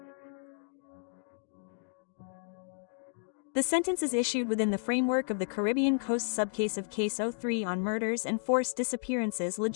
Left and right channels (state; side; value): silent; right; digital silence